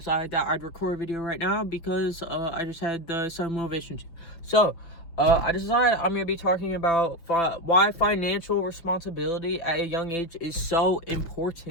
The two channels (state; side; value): late; right; 6.0 ms